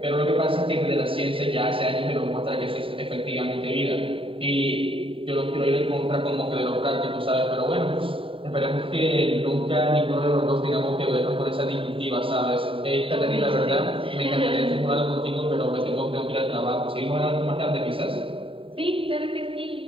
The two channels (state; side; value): late; left; 0.26 ms